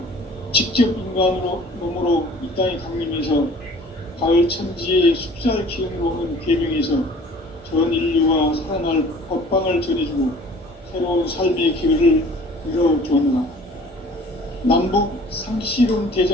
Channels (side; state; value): both; normal; correlation 0.49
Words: 직접 인간으로 몸으로 이 땅에 강림해서 가을 천지의 숲살 기운으로 오는 계명에서 전 인류와 살아날 법방을 전해주고 새로운 삶의 기회를 열어주었노라. 남북 상씨름